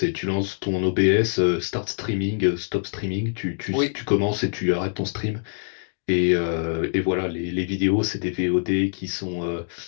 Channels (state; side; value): silent; right; digital silence